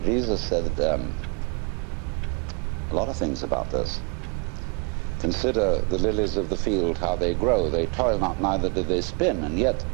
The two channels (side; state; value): left; quieter; 33.7 dB